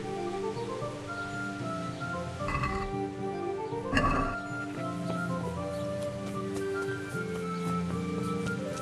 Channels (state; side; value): identical; both; correlation 1.00